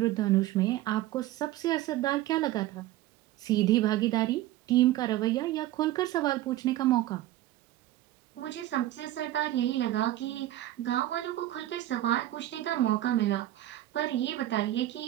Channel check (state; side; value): quieter; left; 14.8 dB